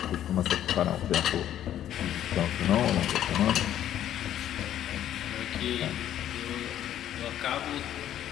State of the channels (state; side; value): quieter; right; 11.3 dB